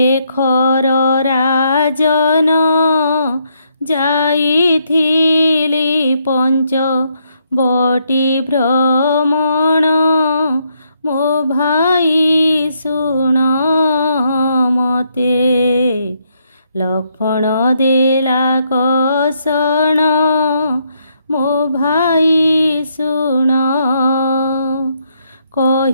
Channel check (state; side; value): inverted; both; correlation -0.75